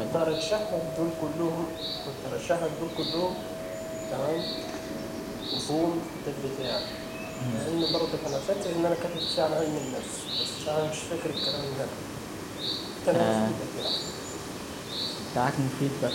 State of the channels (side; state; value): both; identical; correlation 1.00